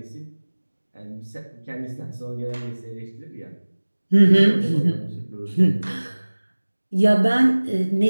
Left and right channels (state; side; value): inverted; both; correlation -1.00